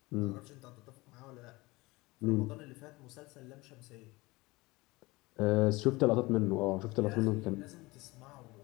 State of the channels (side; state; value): right; quieter; 22.1 dB